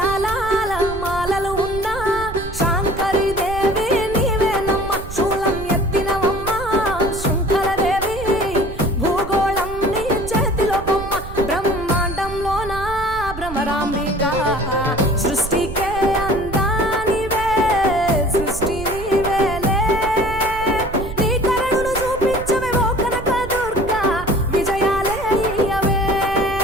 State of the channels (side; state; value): right; noise; rumble, 11 dB below the sound